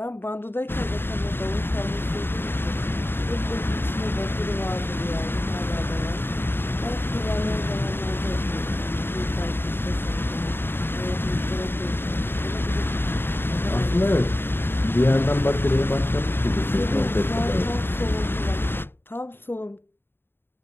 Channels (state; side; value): late; right; 0.10 ms